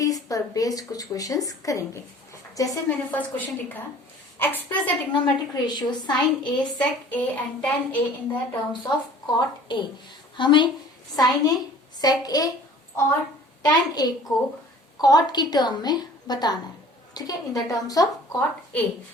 पर बेस्ड कुछ क्वेश्चंस करेंगे। जैसे मैंने फर्स्ट क्वेश्चन लिखा, express the trigonometric ratio sin A, sec A and tan A in the terms of cot A. हमें साइन ए, सेक ए और टेन ए को कॉट की टर्म में बताना है, ठीक है, in the terms of cot A.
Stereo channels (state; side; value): normal; both; correlation 0.49